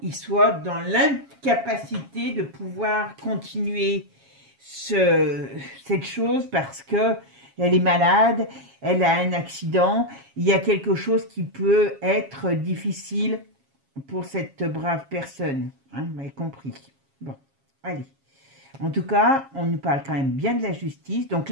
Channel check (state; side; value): late; left; 7.3 ms